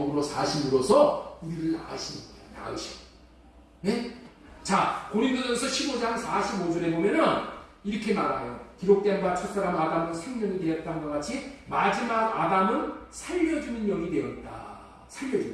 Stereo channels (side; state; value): both; identical; correlation 1.00